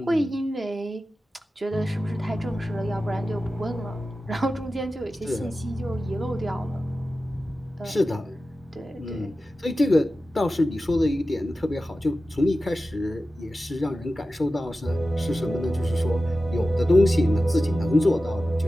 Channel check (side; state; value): both; normal; correlation 0.94